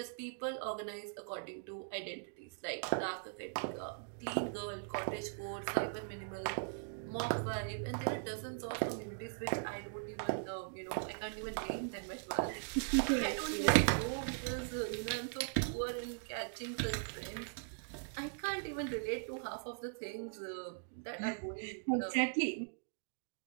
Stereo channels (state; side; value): silent; left; digital silence